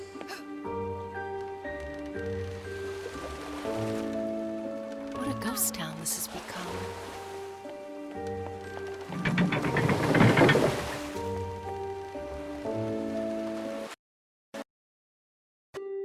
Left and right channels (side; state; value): both; identical; correlation 1.00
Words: What a ghost town this has become.